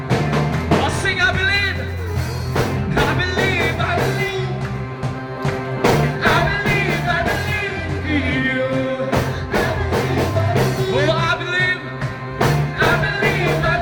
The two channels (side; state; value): both; identical; correlation 1.00